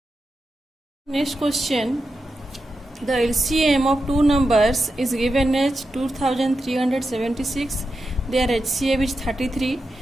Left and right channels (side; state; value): both; normal; correlation 0.89